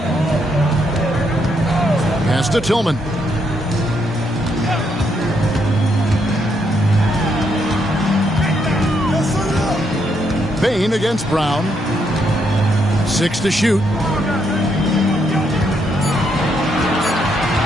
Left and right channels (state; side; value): normal; both; correlation 0.76